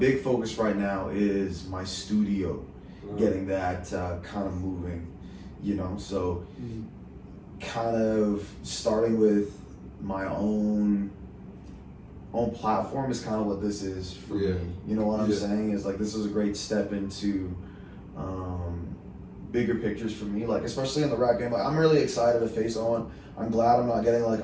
focus right now is my studio, getting that kind of moving. you know. So kind of starting with my own platform is kind of what this is for me. You know what I'm saying? Is like this is a great step into bigger pictures for me, like especially in the rap game. Like I'm really excited to face on. I'm glad I'm not getting like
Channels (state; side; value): identical; both; correlation 1.00